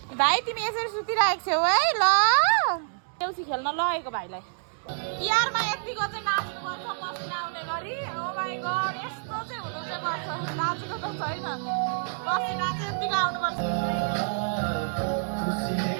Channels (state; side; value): silent; left; digital silence